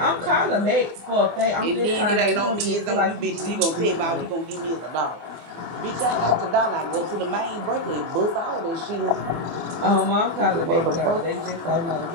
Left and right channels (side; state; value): left; late; 24 ms